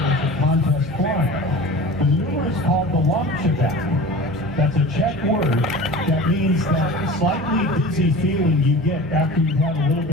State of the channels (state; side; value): normal; both; correlation 0.37